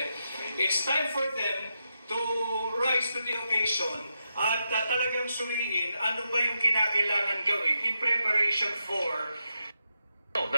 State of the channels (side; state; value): both; inverted; correlation -0.85